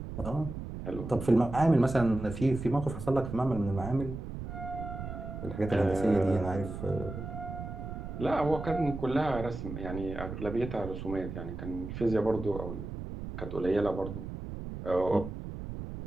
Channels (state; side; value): noise; right; rumble, 8 dB below the sound